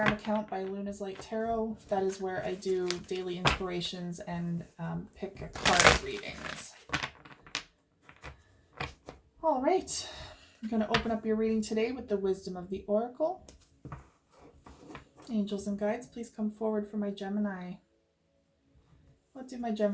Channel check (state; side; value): identical; both; correlation 1.00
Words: account, By Luna's Light Tarot. That is where I do daily inspirations and pick a card readings. All right, I'm going to open up your reading today with the wisdom of the Oracle. Angels and guides, please come forward for my Gemini. What do my